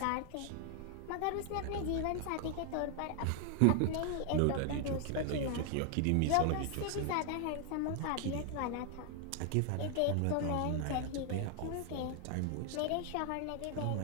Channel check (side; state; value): both; different; correlation 0.00